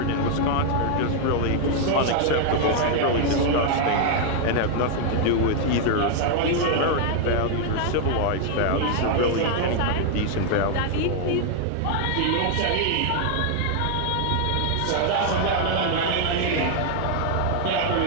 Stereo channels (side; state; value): both; different; correlation 0.00